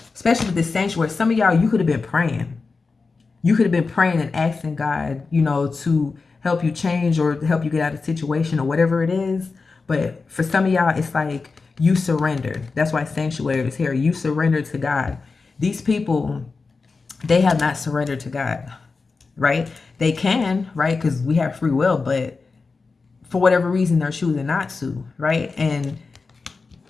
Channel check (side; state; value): right; quieter; 4.3 dB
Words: especially with this sanctuary, some of y'all, you could have been praying. You could have been praying and asking God, to help you change or help you get out of the situation or whatever it is. But for some of y'all, it's like you surrendered. That's why sanctuary is here. You surrendered to God. These people, they have not surrendered to God, right? They can, right? Because we have free will, but for whatever reason, they're choosing not to, right? And